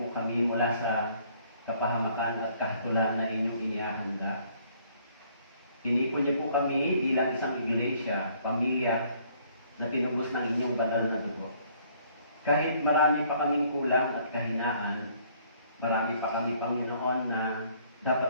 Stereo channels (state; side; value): inverted; both; correlation -0.62